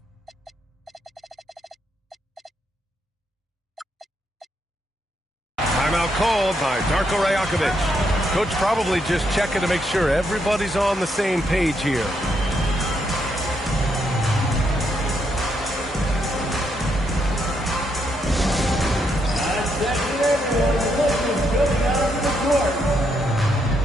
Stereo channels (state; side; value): normal; both; correlation 0.77